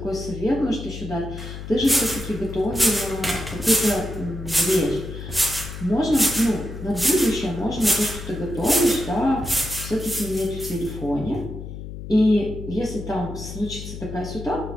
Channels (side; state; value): left; noise; hum, 10 dB below the sound